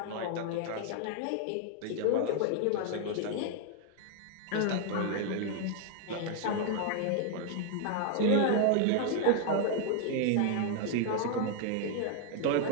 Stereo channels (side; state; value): both; different; correlation 0.01